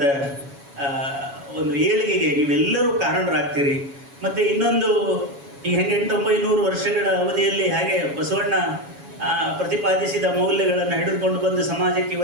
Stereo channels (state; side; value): late; left; 7.2 ms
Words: ಒಂದು ಏಳಿಗೆಗೆ ನೀವೆಲ್ಲರೂ ಕಾರಣರಾಗ್ತೀರಿ. ಮತ್ತು ಇನ್ನೊಂದು, ಈ 800-900 ವರ್ಷಗಳ ಅವಧಿಯಲ್ಲಿ ಹಾಗೆ ಬಸವಣ್ಣ ಪ್ರತಿಪಾದಿಸಿದ ಮೌಲ್ಯಗಳನ್ನು ಹಿಡಿದುಕೊಂಡು ಬಂದು ಸಮಾಜಕ್ಕೆ